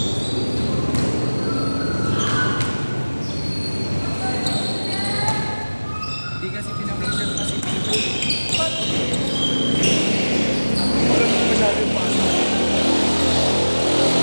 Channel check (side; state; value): both; inverted; correlation -1.00